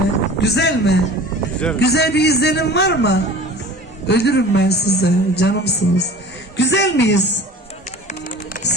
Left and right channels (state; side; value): normal; both; correlation 0.42